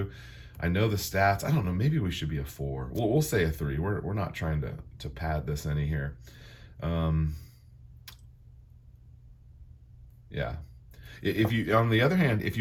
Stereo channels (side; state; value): both; identical; correlation 1.00